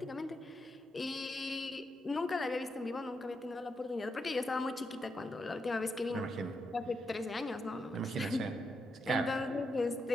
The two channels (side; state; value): both; normal; correlation 0.83